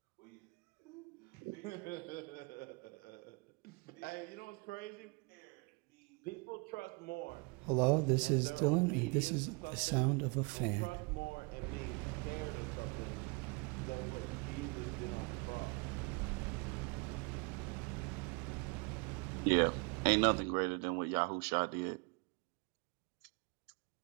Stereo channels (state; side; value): quieter; left; 30.5 dB